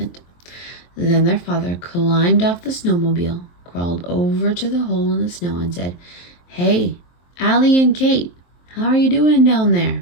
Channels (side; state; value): right; late; 23 ms